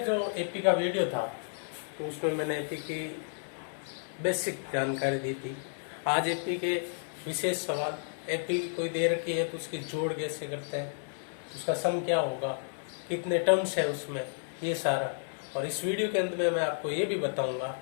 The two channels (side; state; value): right; silent; digital silence